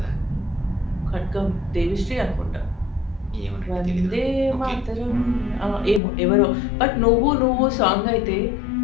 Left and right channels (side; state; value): right; drops out; at 6.0 s